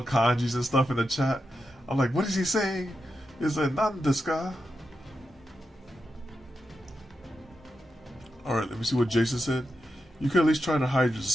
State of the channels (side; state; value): both; normal; correlation 0.88